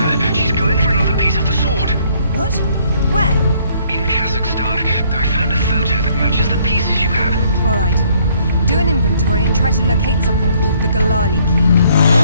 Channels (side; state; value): both; inverted; correlation -0.64